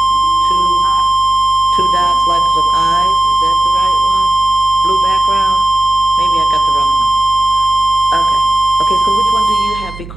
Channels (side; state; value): right; noise; hum, 15 dB below the sound